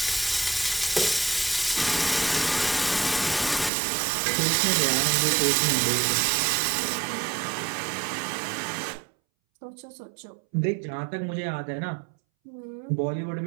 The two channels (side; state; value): left; drops out; at 3.7 s